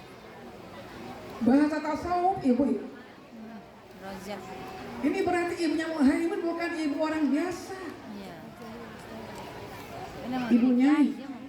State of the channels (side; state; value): both; identical; correlation 1.00